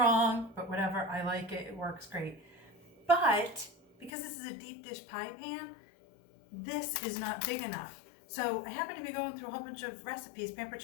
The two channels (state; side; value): drops out; right; at 4.1 s